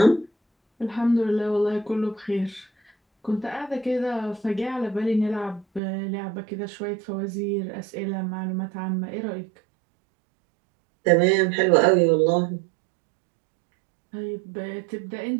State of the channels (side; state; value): left; drops out; at 5.8 s